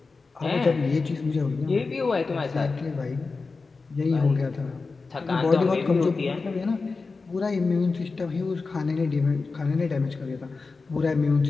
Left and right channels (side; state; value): right; quieter; 4.2 dB